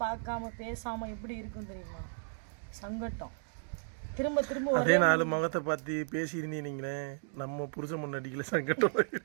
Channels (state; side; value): silent; left; digital silence